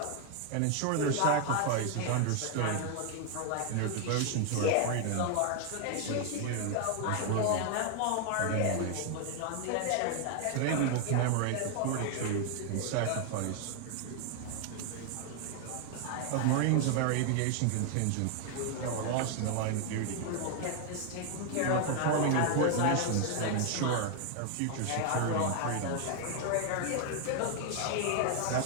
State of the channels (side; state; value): both; different; correlation 0.00